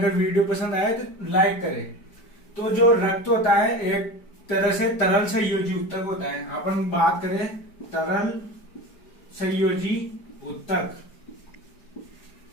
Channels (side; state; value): right; late; 4.8 ms